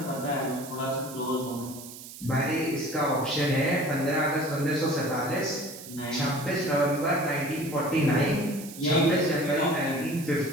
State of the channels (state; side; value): noise; right; hiss, 14 dB below the sound